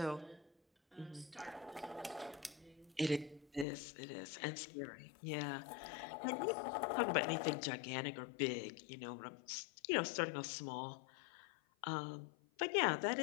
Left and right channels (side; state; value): right; drops out; at 3.7 s